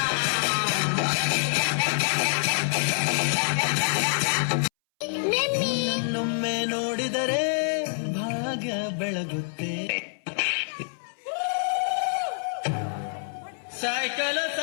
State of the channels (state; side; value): silent; right; 61 dB below the other